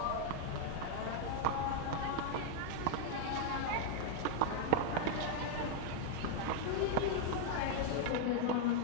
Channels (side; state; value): both; different; correlation 0.00